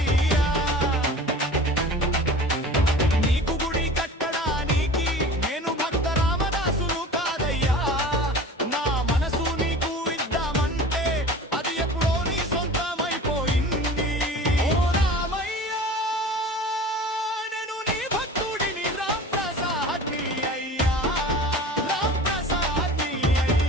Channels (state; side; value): normal; both; correlation 0.39